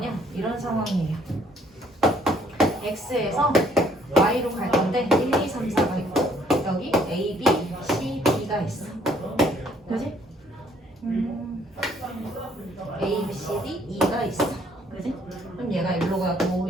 이런 상황이에요. x에서 y로 갈 건데 1, 2, 3, 4가 있고 여기 a, b, c, d가 있어. 그지? a, b, c, d, e가 있어. 그지? 그럼 얘가 일로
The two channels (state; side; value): normal; both; correlation 0.64